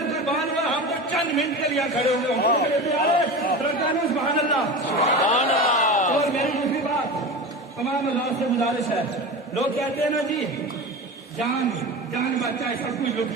कुर्बान हुआ। हम तो चंद मिनट के लिए खड़े हुए हैं। सुभान अल्लाह। और मेरी दूसरी बात तमाम अल्लाह से गुजारिश है, लोग कहते हैं ना जी जान बच जाए सब कुछ लुट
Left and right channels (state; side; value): normal; both; correlation 0.28